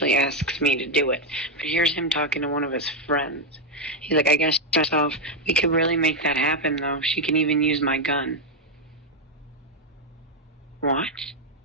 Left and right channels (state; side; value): normal; both; correlation 0.02